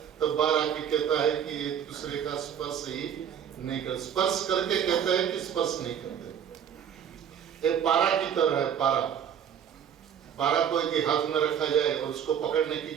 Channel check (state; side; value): quieter; left; 8.7 dB